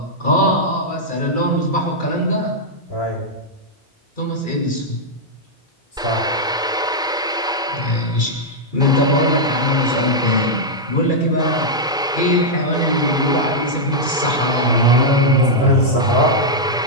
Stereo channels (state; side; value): normal; both; correlation -0.05